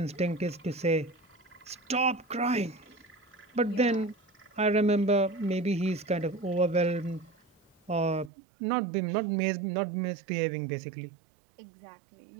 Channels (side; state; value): left; drops out; at 8.3 s